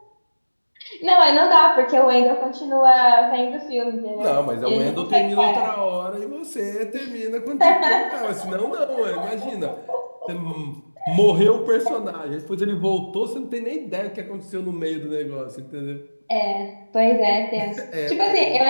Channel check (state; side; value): inverted; both; correlation -1.00